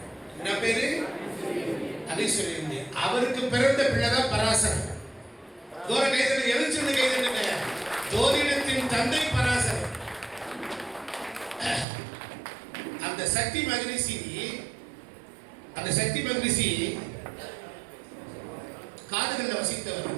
என்ன பேரு? அதிசுரியந்தி. அவருக்கு பிறந்த பிள்ளைதான் பராசரன். தூர கைதல் எழுச்சிருந்து கைதலுங்க. ஜோதிடத்தின் தந்தை பராசரன். அந்த சக்தி மகரிஷி காதுகள்ல வசித்தவர்.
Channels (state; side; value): drops out; left; at 11.9 s